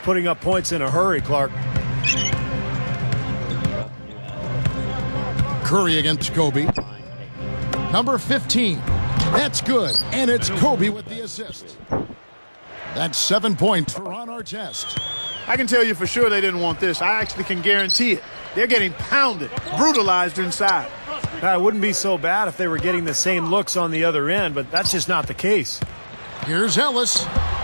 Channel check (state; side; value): inverted; both; correlation -1.00